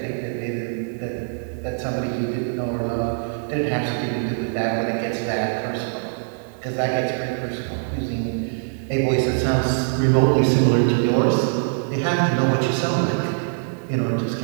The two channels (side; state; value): left; silent; digital silence